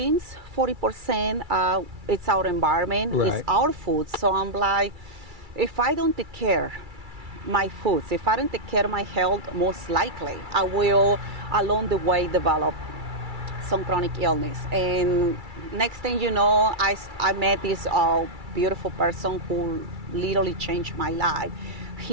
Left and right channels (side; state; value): left; late; 2.3 ms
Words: 40% it's our environment, it's our food. So I'm like, if I don't take care my foods, if I don't take care of my health, most likely I will along the way develop some chronic illness. And next thing you know, I met this beautiful person who literally changed my life.